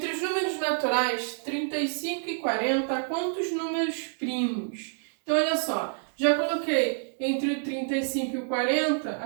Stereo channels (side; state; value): left; silent; digital silence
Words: os números naturais 35 e 40, quantos números primos? Então, olha só, já coloquei entre o 35 e o 40,